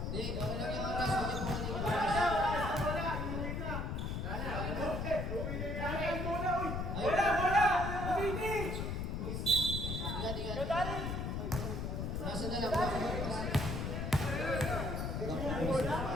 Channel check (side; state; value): left; noise; rumble, 2 dB below the sound